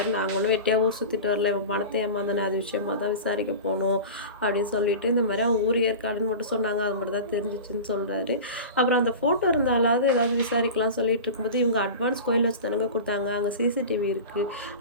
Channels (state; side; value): inverted; both; correlation -0.32